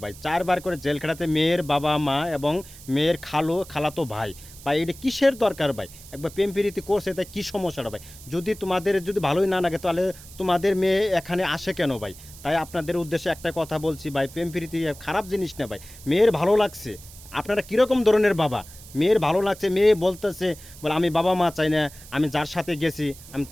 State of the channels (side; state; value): right; noise; hiss, 18 dB below the sound